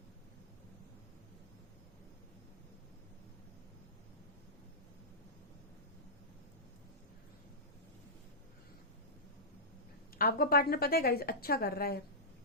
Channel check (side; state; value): both; normal; correlation -0.16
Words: आपका पार्टनर पता है गाइस अच्छा कर रहा है,